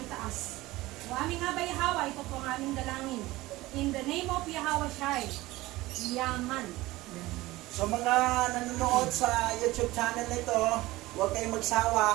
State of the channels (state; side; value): quieter; left; 18.8 dB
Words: O aming Abay Hawa, ito po ang aming dalangin. In the name of Yahweh Shai, Yaman. So mga nanonood sa YouTube channel nito, huwag kayong